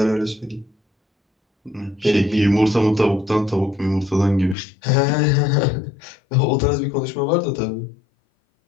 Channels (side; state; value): right; drops out; at 4.5 s